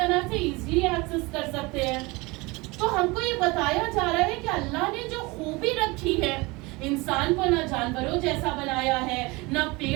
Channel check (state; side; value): quieter; left; 24.4 dB